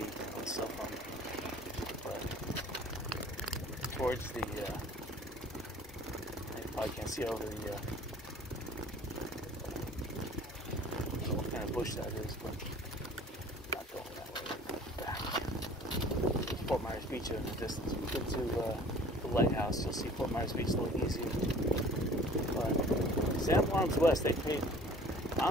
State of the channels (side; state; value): both; normal; correlation 0.48